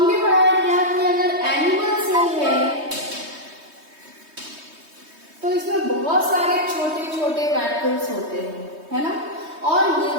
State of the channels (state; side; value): late; left; 3.2 ms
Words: पढ़ा है क्या कि अगर एनिमल सेल है तो इसमें बहुत सारे छोटे छोटे वैक्यूल्स होते हैं, है ना। और